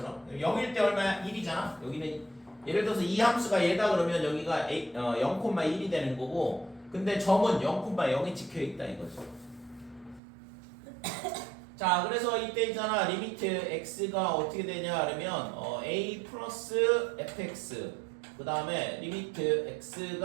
0일 때 얼마야? 1이잖아. 여기는 예를 들어서 이 함수가 얘다 그러면 여기가 0,1이 되는 거고, 근데 점은 0,0이 찍혀 있다 이거죠. 자, 그래서 이때 있잖아. 리미트 x가 어떻게 되냐 그러면 a 플러스 fx, 그 다음에 리미트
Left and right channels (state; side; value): drops out; left; at 10.2 s